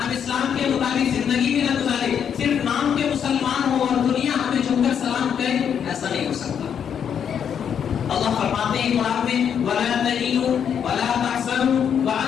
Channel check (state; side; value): quieter; right; 8.1 dB